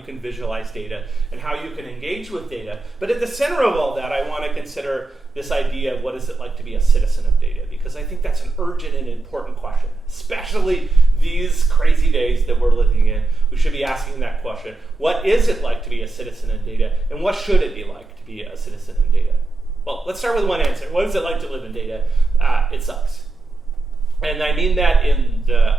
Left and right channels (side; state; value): left; quieter; 3.2 dB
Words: can visualize data and how you can engage with data. But at the center of all that, I want to consider this idea of what is it like to be a citizen of data, because I think that's an urgent and important question, especially these crazy days that we're living in. We should be asking that question. What is it like to be a citizen in data, and what should it be like to be a citizen in data? Well, let's start with one answer. What is it like to live in data? It sucks. And I mean that in the